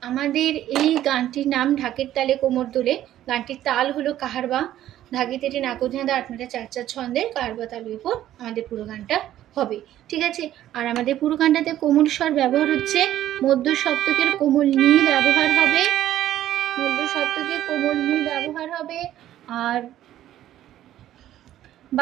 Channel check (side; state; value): left; quieter; 12.7 dB